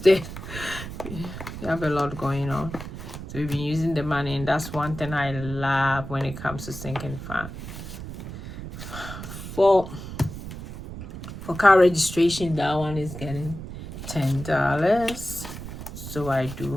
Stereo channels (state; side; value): noise; right; rumble, 10 dB below the sound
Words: it. We have a lot going on, so we've been using the money, and that's one thing I love when it comes to sinking fund. For car registration, that one is getting $10. So I